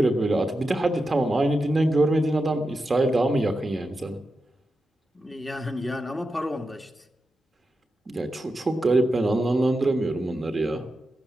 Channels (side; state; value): both; normal; correlation 0.89